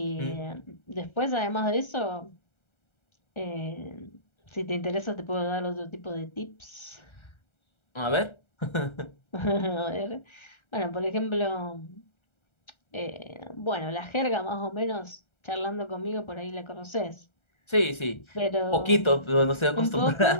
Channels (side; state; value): right; late; 1.3 ms